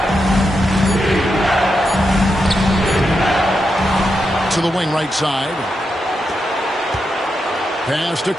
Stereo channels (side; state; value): both; normal; correlation 0.86